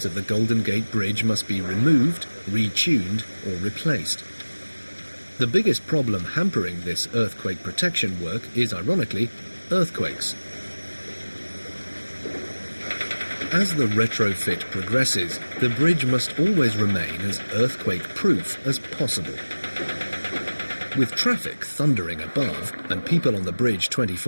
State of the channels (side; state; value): both; inverted; correlation -1.00